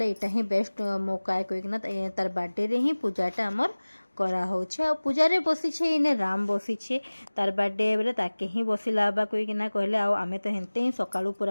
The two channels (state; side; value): inverted; both; correlation -1.00